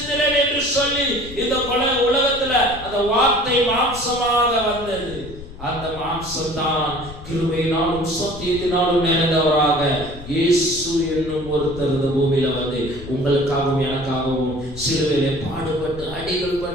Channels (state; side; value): noise; left; rumble, 14 dB below the sound